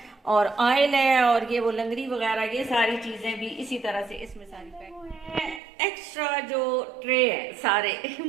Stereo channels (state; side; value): drops out; left; at 5.6 s